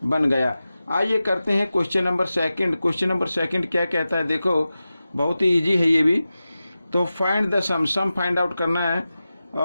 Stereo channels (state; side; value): inverted; both; correlation -0.94